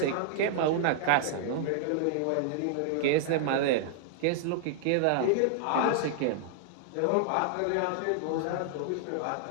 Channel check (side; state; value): both; different; correlation -0.01